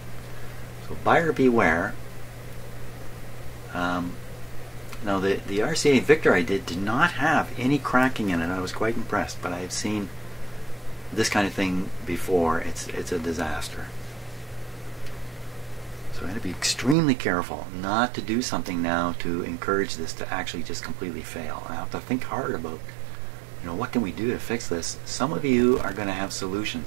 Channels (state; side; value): drops out; left; at 16.9 s